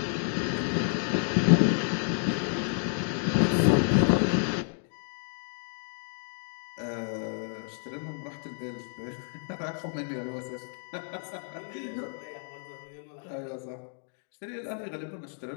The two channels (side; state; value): right; silent; 57 dB below the other